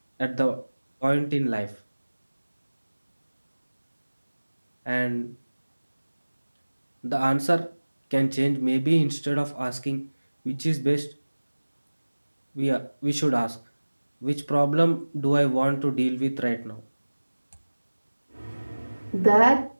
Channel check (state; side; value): inverted; both; correlation -1.00